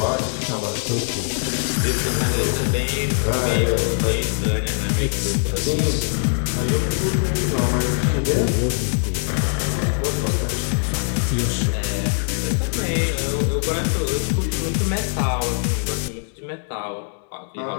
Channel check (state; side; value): silent; right; 64 dB below the other